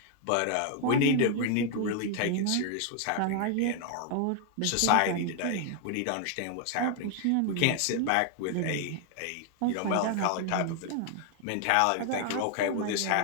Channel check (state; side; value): different; both; correlation 0.00